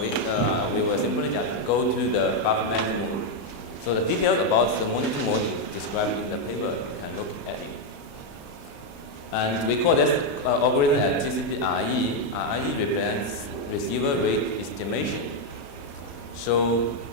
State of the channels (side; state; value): right; late; 35 ms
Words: we will simply just go to the buffer management mode. So the details about the monitor mode is described in the paper. You can look at it. And we call this algorithm as TCP RE. RE represents receiver rate estimation. So